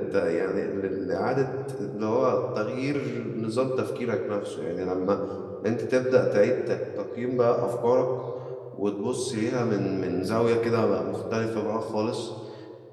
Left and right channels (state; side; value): identical; both; correlation 1.00